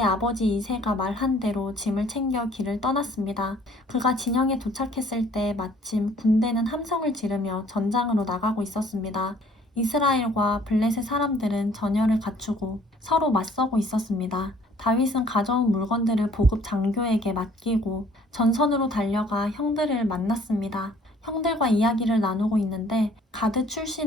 아버지 이새가 말한 대로 짐을 챙겨 길을 떠났습니다. 그가 진영에 도착했을 때 마침 군대는 함성을 지르며 전장으로 나가고 있었습니다. 이스라엘과 블레셋 사람들은 전열을 갖추고 서로 맞서고 있었습니다. 다윗은 가져온 물건들을 보급 장교에게 맡기고 전선으로 달려가 형들을 만났습니다. 형들과 이야기를 나누고 있는데 가드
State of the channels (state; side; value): normal; both; correlation 0.57